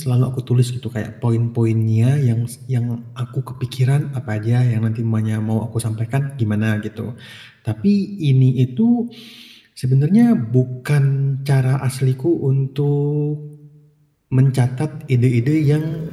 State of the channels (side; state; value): both; identical; correlation 1.00